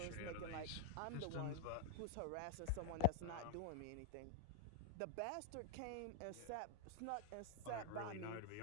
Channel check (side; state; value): both; different; correlation -0.02